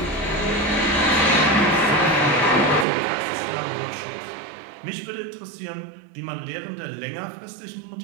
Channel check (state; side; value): drops out; left; at 2.9 s